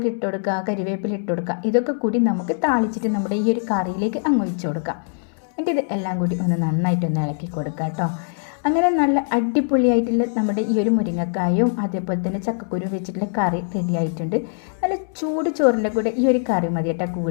ഇട്ട് കൊടുക്കുക, കരിവേപ്പില ഇട്ട് കൊടുക്കുക. ഇതൊക്കെ കൂടി നമുക്ക് താളിച്ചിട്ട് നമ്മുടെ ഈ ഒരു കറിയിലേക്ക് അങ്ങ് ഒഴിച്ചു കൊടുക്കാം. എന്നിട്ട് ഇത് എല്ലാം കൂടി ഒന്ന് നന്നായിട്ടൊന്ന് ഇളക്കി കൊടുക്കുക കേട്ടോ. അങ്ങനെ നല്ല അടിപൊളിയായിട്ടുള്ള നമ്മുടെ ഈ ഒരു മുരിങ്ങക്കായും അതേപോലെ തന്നെ ചക്കക്കുരു വെച്ചിട്ടുള്ള കറി റെഡി ആയിട്ടുണ്ട്. നല്ല ചൂട് ചോറിൻ്റെ കൂടെ ഈ ഒരു കറി മതി കേട്ടോ.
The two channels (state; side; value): silent; right; 64 dB below the other